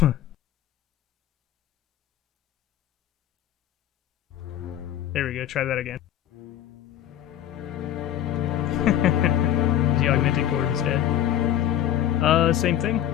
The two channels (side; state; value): right; quieter; 11.6 dB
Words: There we go, try that again. The augmented chord instead. Same thing.